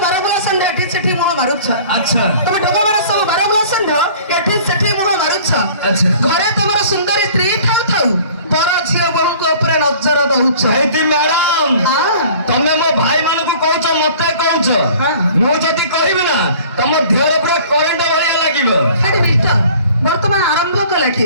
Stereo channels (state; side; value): inverted; both; correlation -0.49